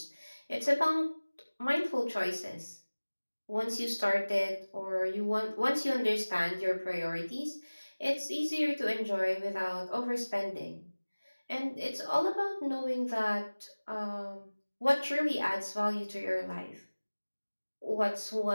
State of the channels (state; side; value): inverted; both; correlation -1.00